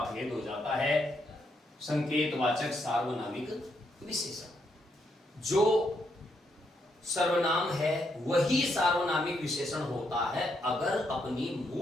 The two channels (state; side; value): normal; both; correlation 0.77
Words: भेद हो जाता है संकेतवाचक सार्वनामिक विशेषण। जो सर्वनाम है वही सार्वनामिक विशेषण होता है अगर अपनी